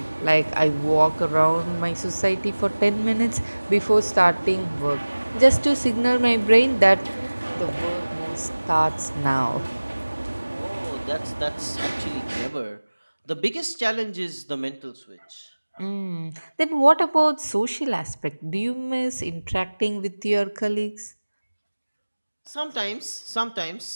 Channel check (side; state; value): both; inverted; correlation -1.00